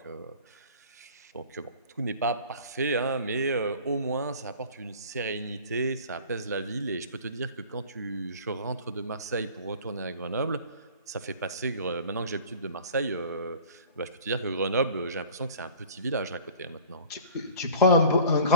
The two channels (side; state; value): both; inverted; correlation -0.45